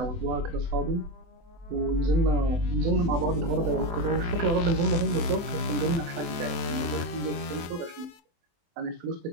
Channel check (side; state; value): left; late; 23 ms